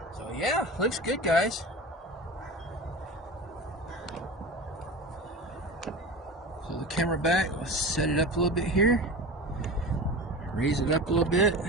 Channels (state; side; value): normal; both; correlation 0.31